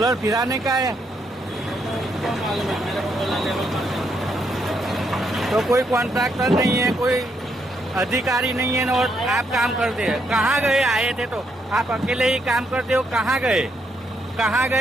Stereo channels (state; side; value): normal; both; correlation 0.76